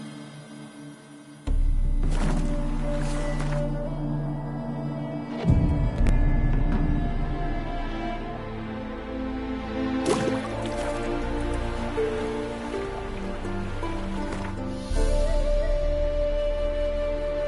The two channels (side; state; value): both; identical; correlation 1.00